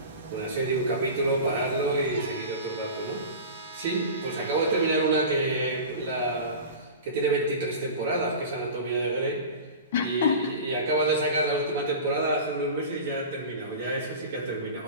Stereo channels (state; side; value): inverted; both; correlation -0.33